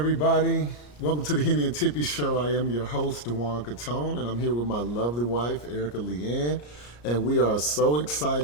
Welcome to the Henny and Tippy Show. I am your host, Dewan Catone, and I'm here with my lovely wife, Erica Leanne, and we are so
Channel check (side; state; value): right; late; 34 ms